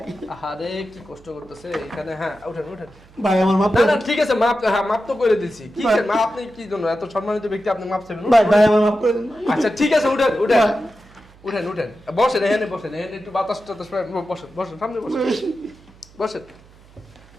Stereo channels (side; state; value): right; noise; hum, 26 dB below the sound